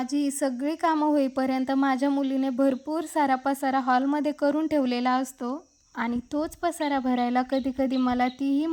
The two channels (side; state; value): both; identical; correlation 1.00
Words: ही सगळी कामं होईपर्यंत माझ्या मुलीने भरपूर सारा पसारा हॉलमध्ये करून ठेवलेला असतो आणि तोच पसारा भरायला कधी कधी मला तीही